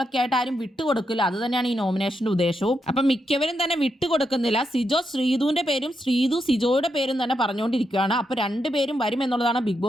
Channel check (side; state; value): both; normal; correlation 0.83